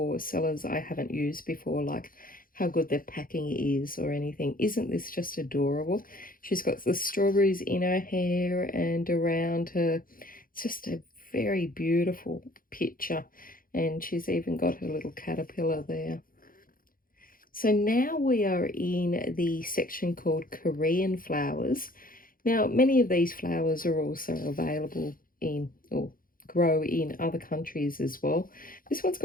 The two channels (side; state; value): right; late; 0.41 ms